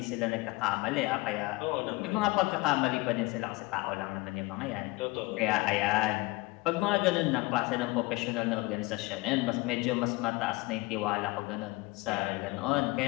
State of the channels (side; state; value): right; quieter; 22.3 dB